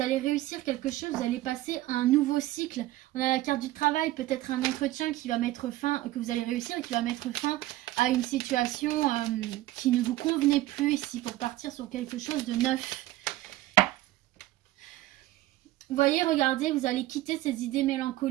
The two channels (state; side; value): quieter; left; 16.3 dB